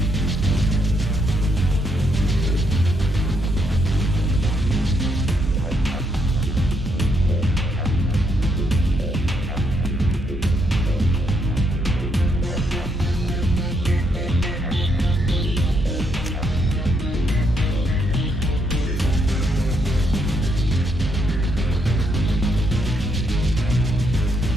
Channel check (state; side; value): normal; both; correlation 0.75